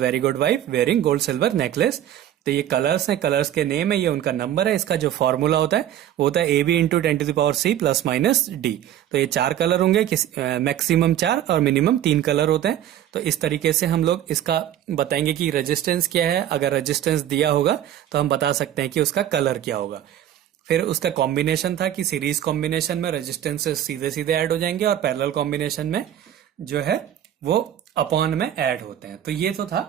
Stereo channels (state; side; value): quieter; left; 11.3 dB